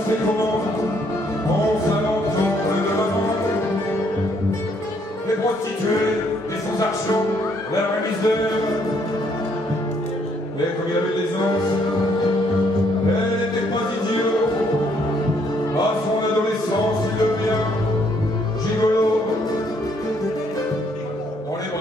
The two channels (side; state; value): both; normal; correlation 0.69